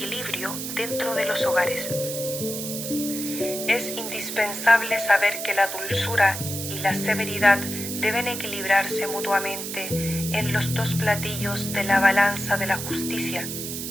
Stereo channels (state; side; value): noise; right; hiss, 6 dB below the sound